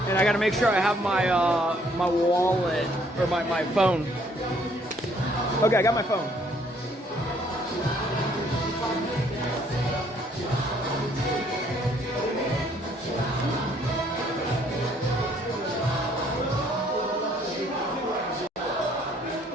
And I gotta make sure I have my my wallet or my phone. Okay, I got my phone.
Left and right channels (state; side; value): normal; both; correlation 0.64